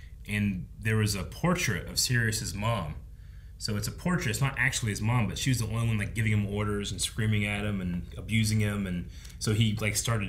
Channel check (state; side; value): identical; both; correlation 1.00